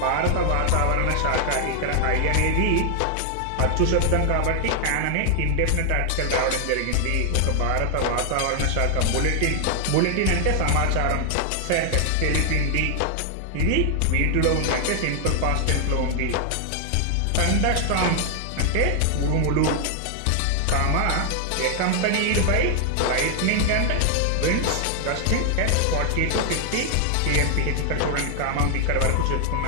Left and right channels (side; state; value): both; different; correlation 0.00